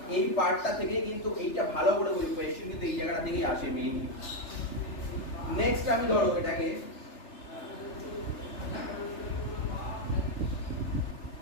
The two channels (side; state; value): right; late; 3.4 ms